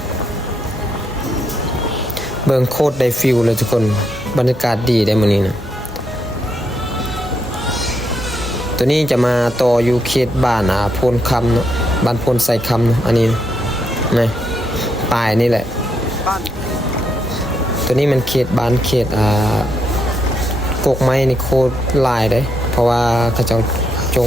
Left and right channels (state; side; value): normal; both; correlation 0.79